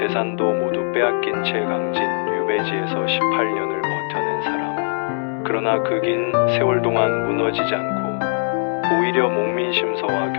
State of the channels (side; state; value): right; silent; digital silence